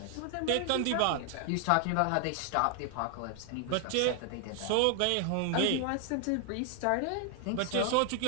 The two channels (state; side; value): different; both; correlation 0.00